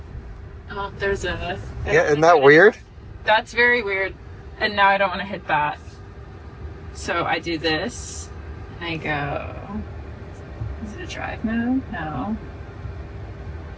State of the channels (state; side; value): identical; both; correlation 1.00